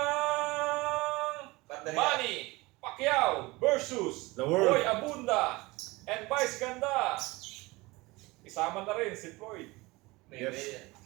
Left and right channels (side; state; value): left; quieter; 22.4 dB